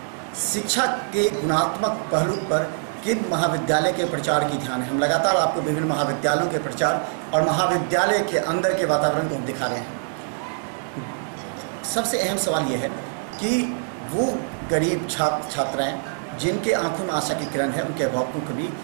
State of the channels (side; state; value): left; silent; 63 dB below the other